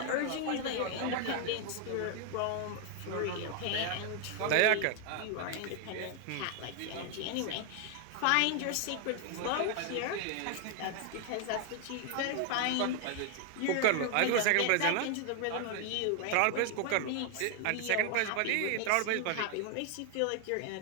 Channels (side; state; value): both; different; correlation 0.00